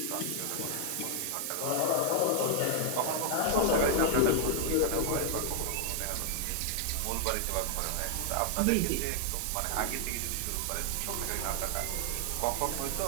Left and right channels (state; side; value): different; both; correlation 0.00